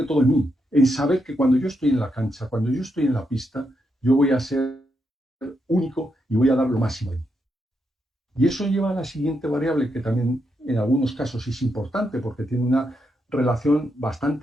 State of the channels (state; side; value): normal; both; correlation 0.82